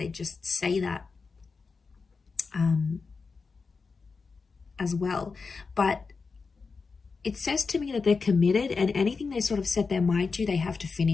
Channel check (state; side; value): quieter; right; 4.7 dB